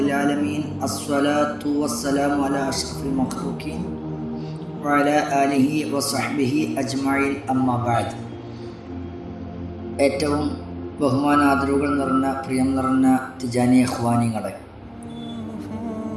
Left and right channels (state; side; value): identical; both; correlation 1.00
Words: alamin. Assalatu wassalamu ala asyrafil makhluqin wa ala alihi wa sahbihi ajma'in. Amma ba'd. ഏറ്റവും ബഹുമാനാദരവുകൾ നിറഞ്ഞ പ്രിയം നിറഞ്ഞ തിജാനി ഇഖ്വാനികളെ,